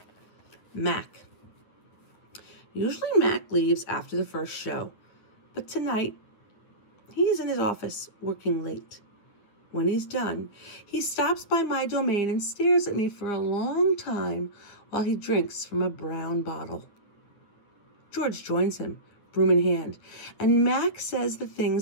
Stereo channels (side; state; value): right; late; 9.2 ms